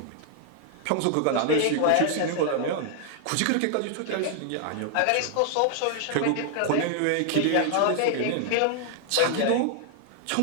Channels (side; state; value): both; different; correlation 0.00